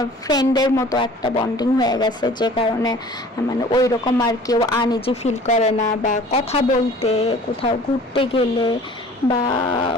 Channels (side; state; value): both; normal; correlation 0.48